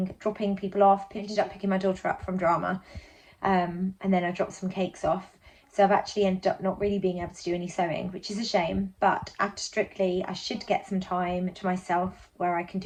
dropping people off, ended up picking my daughter up from drama, and then I dropped some cakes off. So I've actually ended up not really being able to do any sewing, which is a shame. But after Strictly, I should get some time to myself where I can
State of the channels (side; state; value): both; identical; correlation 1.00